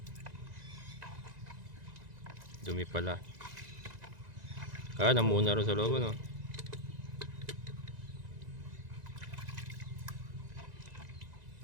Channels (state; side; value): late; left; 1.9 ms